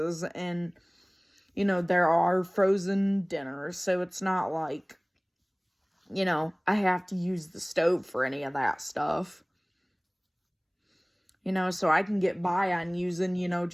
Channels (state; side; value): identical; both; correlation 1.00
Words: and, you know, there are frozen dinners. So it's not like, you know, I have to use the stove for any of that stuff. You know, so I can get by on using, you know,